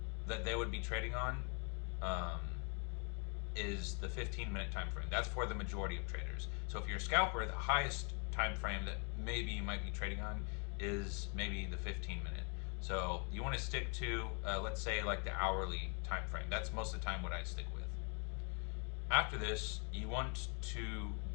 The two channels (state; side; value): quieter; right; 37.1 dB